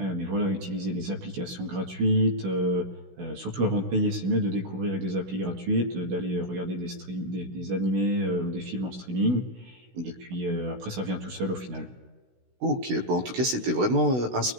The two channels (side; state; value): left; late; 16 ms